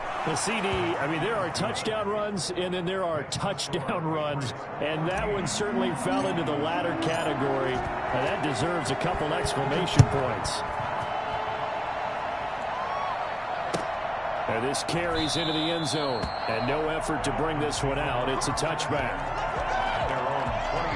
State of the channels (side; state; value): both; identical; correlation 1.00